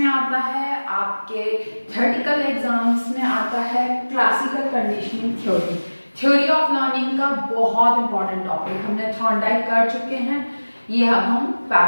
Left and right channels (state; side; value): inverted; both; correlation -1.00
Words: आता है, आपके थ्योरेटिकल एग्जाम्स में आता है। Classical conditioning theory of learning का बहुत इम्पॉर्टेंट टॉपिक हमने थॉर्नडाइक कर चुके हैं, ये अब हम